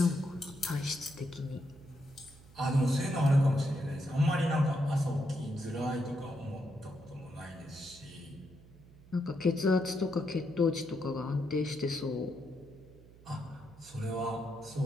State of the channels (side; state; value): right; noise; hum, 22 dB below the sound